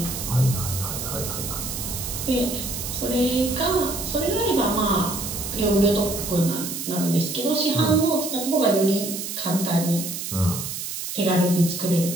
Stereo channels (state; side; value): noise; right; hiss, 6 dB below the sound